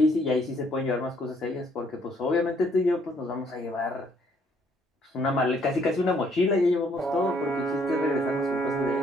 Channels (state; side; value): normal; both; correlation 0.66